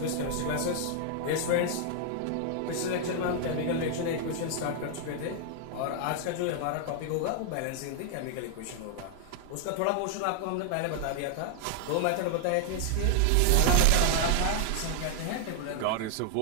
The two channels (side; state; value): both; different; correlation 0.00